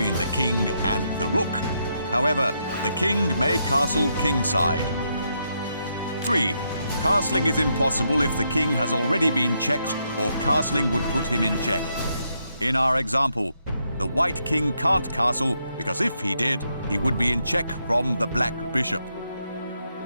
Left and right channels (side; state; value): both; inverted; correlation -0.79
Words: the king and the rook. However, the king may castle kingside. 3. Castling is impossible if the king has already been checked, or castling would put him in check. In our example, the White King can't castle because if he did, he would be in check from the Black Bishop.